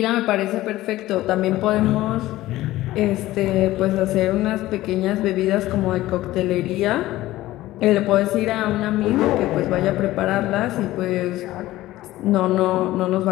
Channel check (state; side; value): quieter; right; 16.3 dB